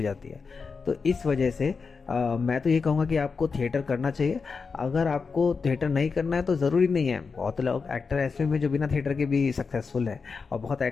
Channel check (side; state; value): right; quieter; 5.0 dB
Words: है। तो इस वजह से मैं तो ये कहूँगा कि आपको थिएटर करना चाहिए। अगर आपको थिएटर नहीं करना है तो ज़रूरी नहीं है, बहुत लोग एक्टर ऐसे भी जो बिना थिएटर के भी सक्सेसफुल है, और बहुत